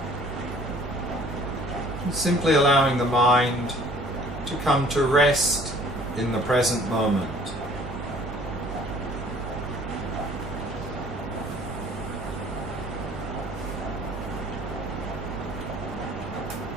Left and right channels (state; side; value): normal; both; correlation 0.54